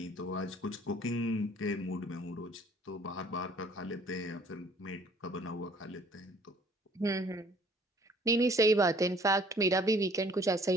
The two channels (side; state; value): both; normal; correlation 0.56